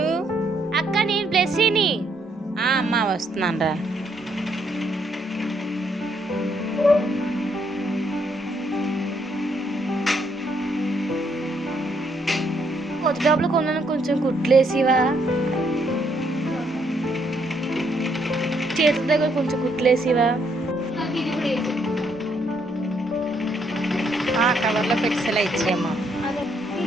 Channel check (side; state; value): both; normal; correlation 0.72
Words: అక్క నేను బ్లెస్సీని. అమ్మా వస్తున్నాను రా. కొత్త డబ్బులు కొన్నాను, కొంచెం కుట్లేసివా? చేతుల దగ్గర కొంచెం కుట్లేసివా? కవర్లో పెట్సలా ఇచ్చేయమ్మా.